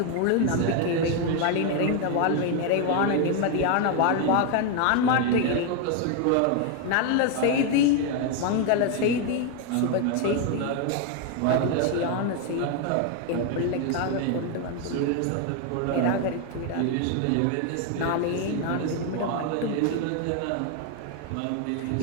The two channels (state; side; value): different; both; correlation 0.01